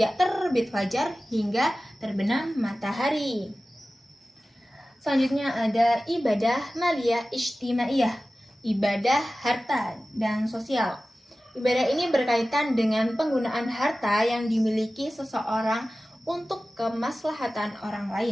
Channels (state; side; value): normal; both; correlation 0.96